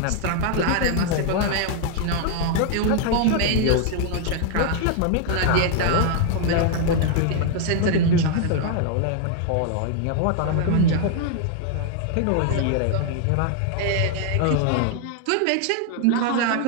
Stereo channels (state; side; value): different; both; correlation 0.00